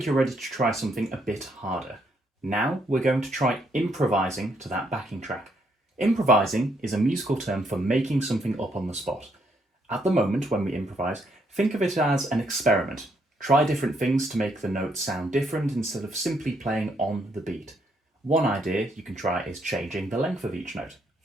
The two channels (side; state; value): both; normal; correlation 0.73